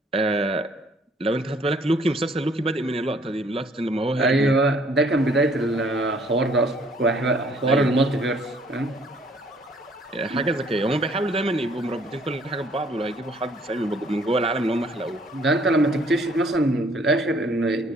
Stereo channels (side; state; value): both; normal; correlation 0.61